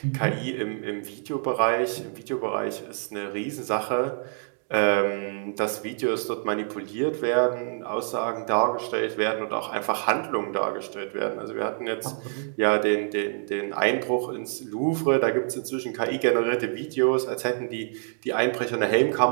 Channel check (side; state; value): left; silent; 61 dB below the other